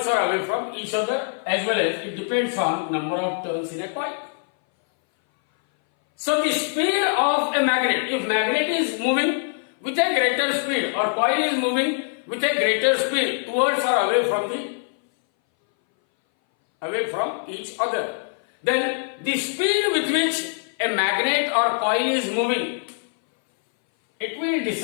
each other, as well as it depends on number of turns in a coil. So the speed of a magnet, if magnet is moving with a greater speed or coil is moving with a greater speed towards or away from each other, then the speed with which a magnet or coil is moving, it will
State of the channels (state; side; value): silent; right; 60 dB below the other